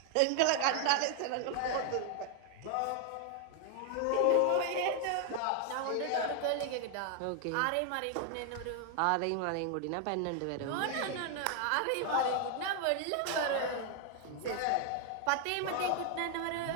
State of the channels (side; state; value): both; different; correlation 0.00